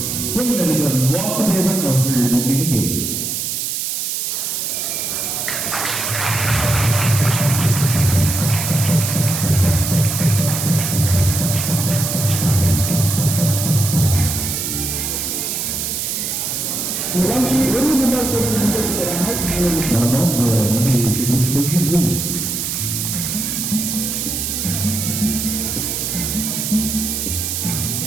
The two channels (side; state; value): right; noise; hiss, 2 dB below the sound